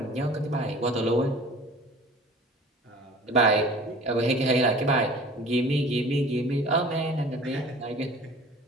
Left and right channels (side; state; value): both; normal; correlation 0.45